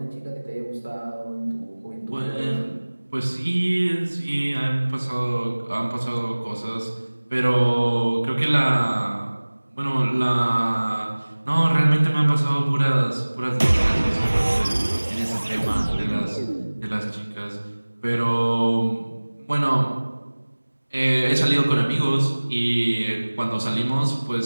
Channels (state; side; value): inverted; both; correlation -1.00